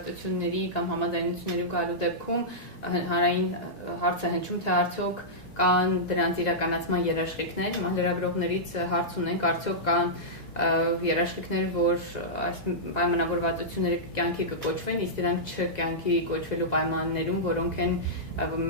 կամ համաձայնությունների գալու դեպքում հանրային հարց է հնչում, թե արդյոք կան դրանց իրականացման երաշխիքներ, լրագրողներից հարց ունենք, արդյոք կան երաշխիքներ, որ այս պայմանավորվածությունները կյանքի կկոչվեն, իսկ դրանք չկյանքի կոչվելու պայմաններում, որոնք են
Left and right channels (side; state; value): both; normal; correlation -0.13